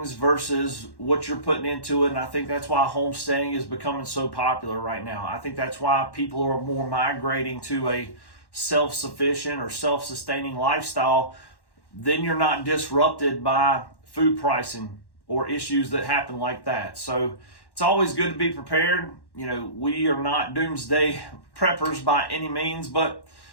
versus what you're putting into it. And I think that's why homesteading is becoming so popular right now. I think that's why people are more migrating to a self-sufficient or self-sustaining lifestyle. Then you're not disrupted by food pricing or issues that happen like that. So it's always good to be prepared. You know, we are not doomsday preppers by any means, but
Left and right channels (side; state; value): right; late; 1.1 ms